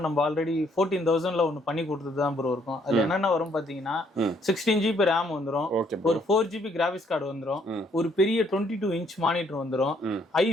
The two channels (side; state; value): both; normal; correlation 0.67